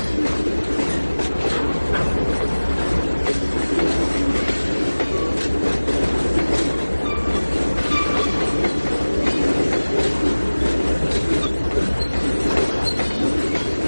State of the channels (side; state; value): both; inverted; correlation -1.00